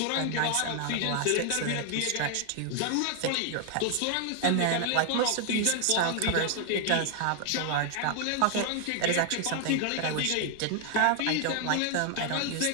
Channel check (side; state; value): both; different; correlation 0.00